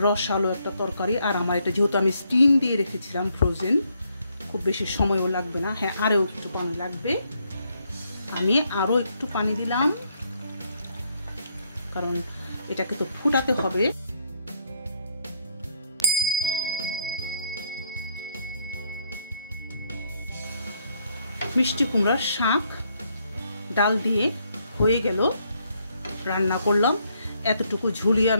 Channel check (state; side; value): inverted; both; correlation -0.73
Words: রসালো একটা তরকারি। আর আমার এটা যেহেতু আমি স্টিম দিয়ে রেখেছিলাম ফ্রোজেন, খুব বেশি সময়ও লাগবে না। হ্যাঁ, আরও একটু পানি লাগবে। আমি আরও একটু পানি দিলাম, কারণ এটাকে তো ফুটাতে হবে। মিষ্টি কুমড়ার শাক ডাল দিয়ে হয়ে গেল, রান্না করলাম। এতটুকু ঝুলি